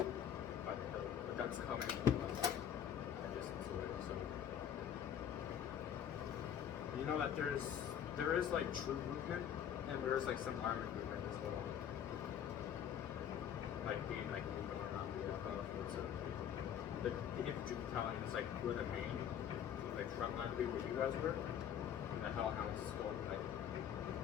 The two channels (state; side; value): quieter; right; 9.2 dB